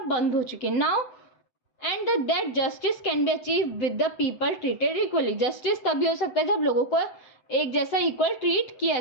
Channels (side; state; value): right; late; 7.9 ms